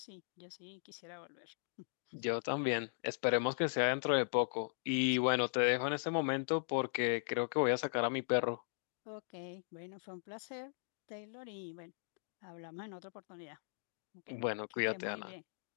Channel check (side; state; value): right; silent; digital silence